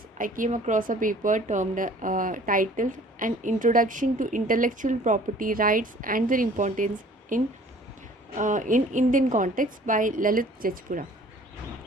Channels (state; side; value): normal; both; correlation 0.52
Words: I came across a paper termed titled An Introduction to Intellectual Property Rights and Their Importance in Indian Context by Lalit Jajpura.